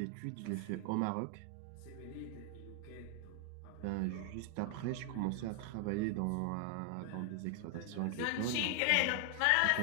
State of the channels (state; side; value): different; both; correlation 0.00